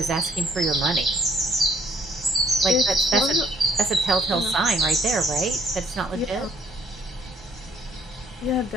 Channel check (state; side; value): normal; both; correlation 0.64